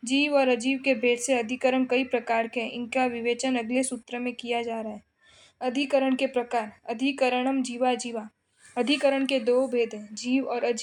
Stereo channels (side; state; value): both; identical; correlation 1.00